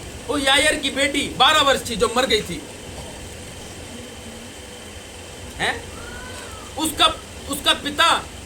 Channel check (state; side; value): identical; both; correlation 1.00